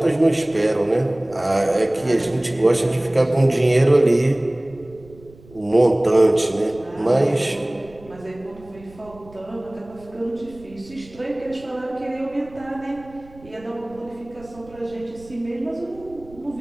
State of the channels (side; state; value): right; noise; rumble, 23 dB below the sound